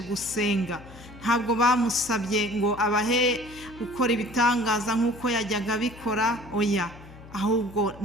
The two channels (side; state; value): left; noise; hum, 19 dB below the sound